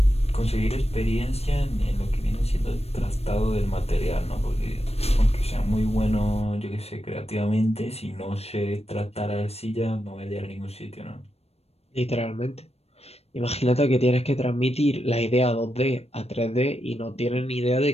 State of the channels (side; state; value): right; late; 0.30 ms